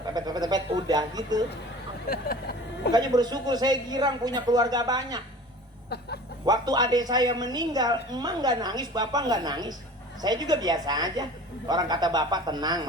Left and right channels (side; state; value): both; normal; correlation 0.42